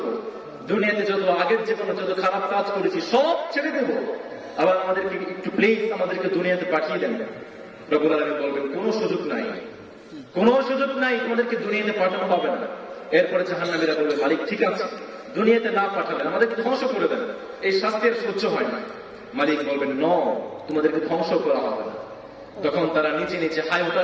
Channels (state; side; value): identical; both; correlation 1.00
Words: দুনিয়াতে যত আগের জীবনে যত খারাপ কাজ করেছি সব ছেড়ে দেব, আবার আমাদেরকে একটু প্লিজ আমাদেরকে দুনিয়াতে পাঠিয়ে দেন। রব্বুল আলামিন বলবেন, কোনো সুযোগ নাই, কোনো সুযোগ নাই, তোমাদেরকে দুনিয়াতে পাঠানো হবে না। এরপরে জাহান্নামীরা বলবে, মালিক ঠিক আছে, দুনিয়াতে না পাঠালেন আমাদেরকে ধ্বংস করে দেন, এই শাস্তি আর সহ্য হয় না। মালিক বলবেন, ন, তোমাদেরকে ধ্বংস করা হবে না। তখন তারা নিচে নিচে হাই